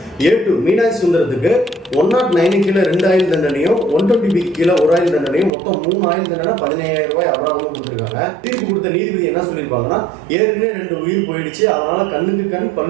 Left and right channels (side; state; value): left; drops out; at 5.5 s